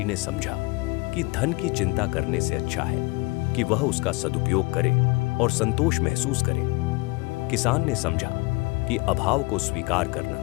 ने समझा कि धन की चिंता करने से अच्छा है कि वह उसका सदुपयोग करे और संतोष महसूस करे। किसान ने समझा कि अभाव को स्वीकार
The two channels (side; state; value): right; quieter; 25.3 dB